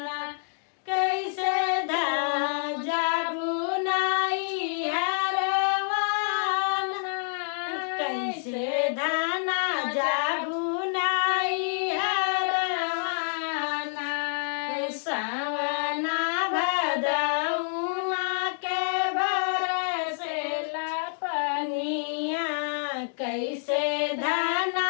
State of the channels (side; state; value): right; silent; digital silence